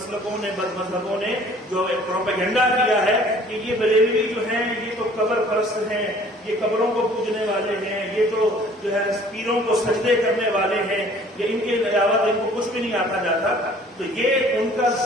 نے، بد مذہبوں نے جو پروپیگنڈا کیا ہے کہ یہ بریلوی جو ہیں یہ تو قبر پرست ہیں، یہ قبروں کو پوجنے والے ہیں، یہ تو جو ہے پیروں کو سجدے کرنے والے ہیں، یہ ان کے علاوہ ان کو کچھ بھی نہیں آتا جاتا. تو یہ ان کا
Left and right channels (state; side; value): normal; both; correlation 0.53